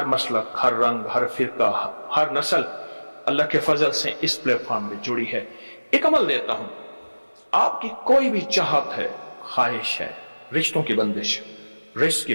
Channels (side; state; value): both; inverted; correlation -1.00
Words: मसलक, हर रंग, हर फिरका, हर नस्ल अल्लाह के फजल से इस प्लेटफॉर्म में जुड़ी है। एक अमल देता हूं, आपकी कोई भी चाहत है, ख्वाहिश है, रिश्तों की बंदिश, रिस्क की